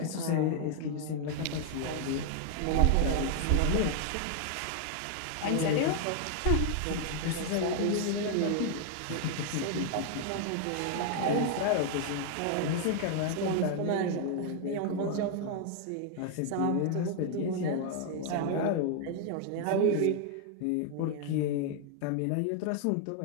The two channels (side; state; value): both; different; correlation 0.00